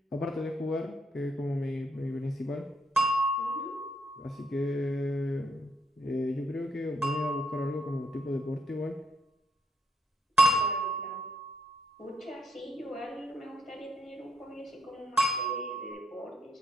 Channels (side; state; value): both; normal; correlation 0.74